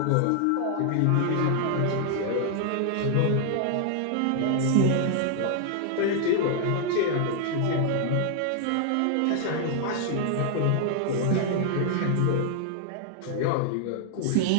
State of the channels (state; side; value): different; both; correlation 0.00